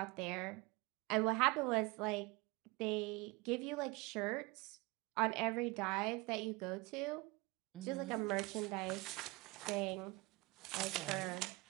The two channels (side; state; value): left; quieter; 24.5 dB